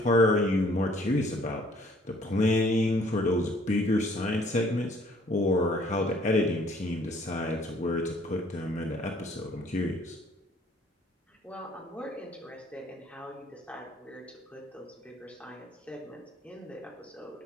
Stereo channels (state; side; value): normal; both; correlation 0.59